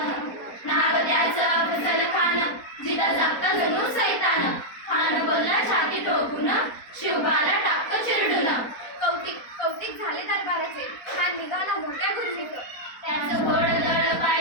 नाव त्याचं अफजल खान. जिता जागता जणू सैतान. खान बोलला छाती ठोकून, शिवबाला टाकतो चिरडून. कौतिक झाले दरबाराचे. खान निघाला मोठ्या गुरमीत. त्याचं घोडदळ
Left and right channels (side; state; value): right; late; 4.2 ms